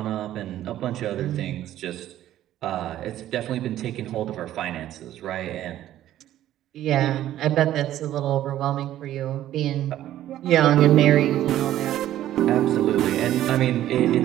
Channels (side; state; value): left; quieter; 12.9 dB